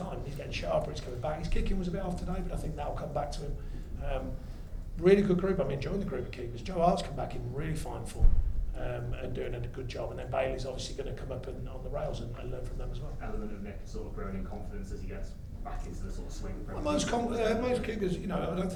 He's getting sharper, he's coming back. His kicking was a bit off today, but I think that'll come back to him. Really good group. I'm enjoying the group of keepers. Joe Hart's come back in really fine form and doing a good job. And then Bailey's obviously going to come up on the rails and learn from them as well. Element of Nick sort of growing in confidence as he gets back into the sort of swing. Well, most keepers, you know, I don't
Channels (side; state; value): both; identical; correlation 1.00